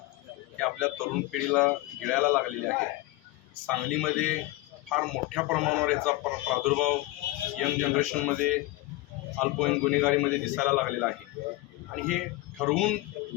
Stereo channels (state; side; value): quieter; right; 18.5 dB